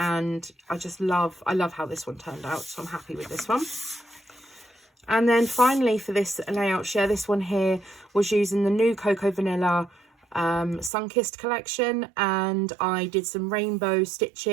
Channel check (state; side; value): drops out; left; at 10.9 s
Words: I love how this one turned out, so I'm happy with this one. And then finally for this layout share, this one here was using the new Cocoa Vanilla Sunkissed collection, and I did some rainbow